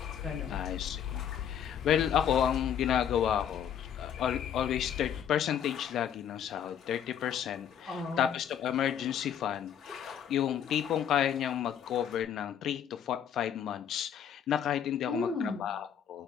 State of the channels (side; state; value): right; quieter; 9.0 dB